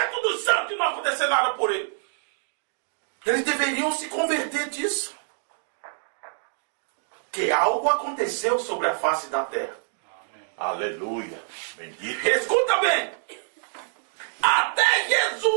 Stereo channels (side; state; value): left; silent; 61 dB below the other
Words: dos santos não acontecer nada por ele. Eles deveriam se converter disso. Que algo aconteceu sobre a face da terra. Aleluia. Bendito. Escuta bem. Até